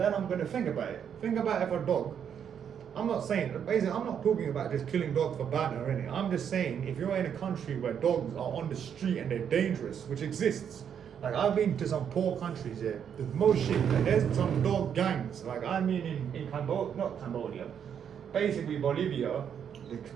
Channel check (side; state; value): left; quieter; 8.2 dB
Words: I'm gonna think about it. Think about if a dog, I'm not saying, basically I'm not talking about just killing dogs for banter or anything. I'm just saying, if you're in a country where dogs are on the street and they're dangerous, which exists, like I've been to some poor countries here, there's most shit, like there's some dog gangs. Like I mean in Cambodia, not Cambodia, basically Bolivia, the